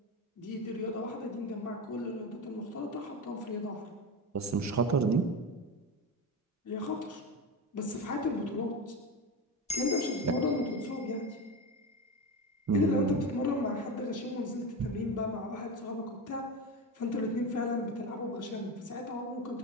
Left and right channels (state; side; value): normal; both; correlation 0.21